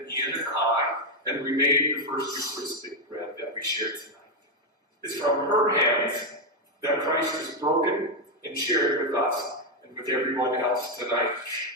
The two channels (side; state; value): both; normal; correlation 0.04